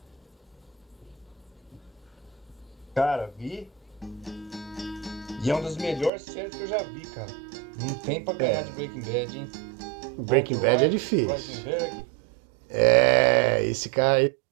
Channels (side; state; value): left; drops out; at 6.1 s